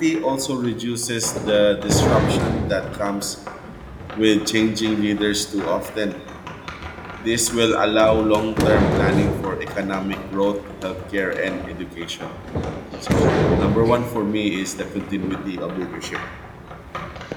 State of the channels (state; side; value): identical; both; correlation 1.00